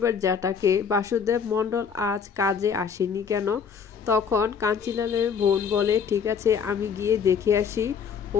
জ্যাঠাকে, বাসুদেব মণ্ডল আজ কাজে আসেনি কেন? তখন কাঞ্চিলালের বোন বলে, ঠিক আছে আমি গিয়ে দেখে আসি ও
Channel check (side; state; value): right; quieter; 6.6 dB